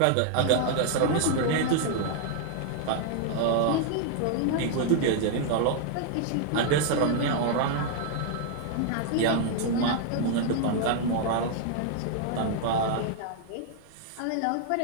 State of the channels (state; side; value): different; both; correlation 0.00